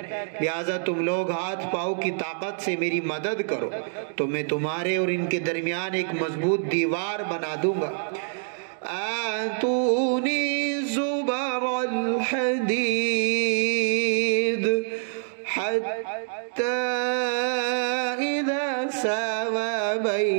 لہٰذا تم لوگ ہاتھ پاؤں کی طاقت سے میری مدد کرو تو میں تمہارے اور ان کے درمیان ایک مضبوط دیوار بنا دوں گا۔ آتونی زبر الحدید حتی اذا ساوى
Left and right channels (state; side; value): silent; left; 61 dB below the other